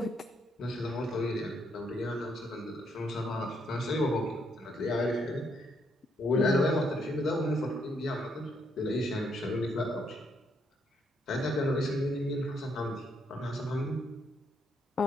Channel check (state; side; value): normal; both; correlation 0.74